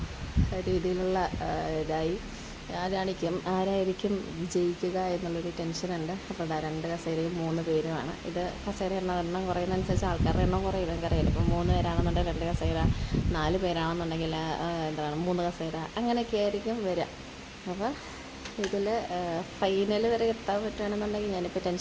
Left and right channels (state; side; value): identical; both; correlation 1.00